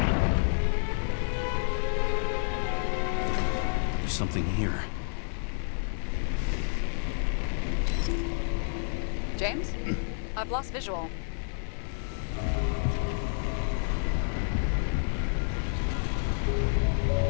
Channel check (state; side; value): silent; right; 58 dB below the other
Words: There's something here. James? I've lost visual.